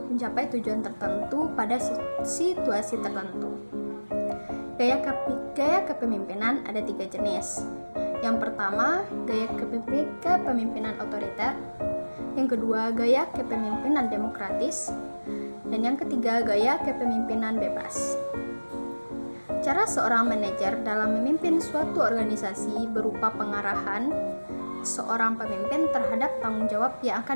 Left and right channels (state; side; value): inverted; both; correlation -1.00